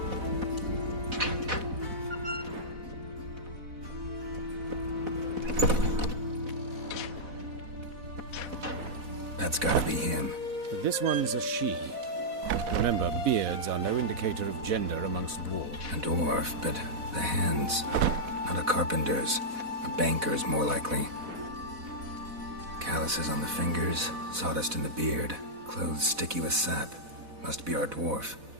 That's gotta be him. But this one's a she. Remember, beards are no indicator of gender amongst dwarves. A dwarf, but the hands. Not a carpenter's. A banker's, more likely. Calluses on the fingers, sawdust in the beard, clothes sticky with sap. Must be our dwarf.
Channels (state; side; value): late; left; 4.1 ms